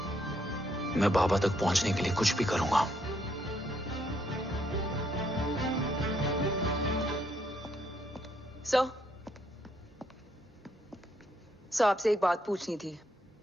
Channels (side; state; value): both; normal; correlation 0.73